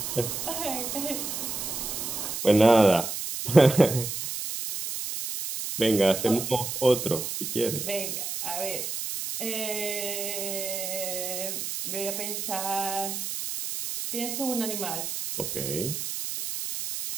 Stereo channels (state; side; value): noise; right; hiss, 4 dB below the sound